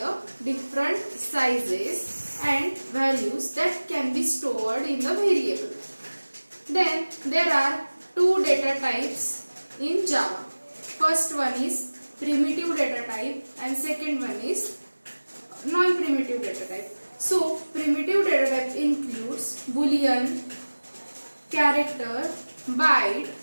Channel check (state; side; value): inverted; both; correlation -1.00